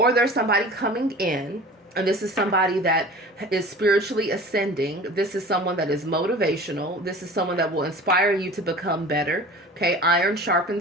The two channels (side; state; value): both; normal; correlation 0.40